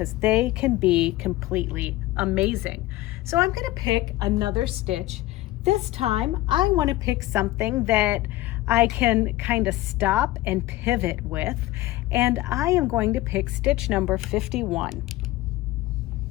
they can be completely amazing. So I'm going to pick another stitch. This time I want to pick something that I can kind of stop and pivot with, and I am going to pick stitch number 51.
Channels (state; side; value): quieter; right; 17.1 dB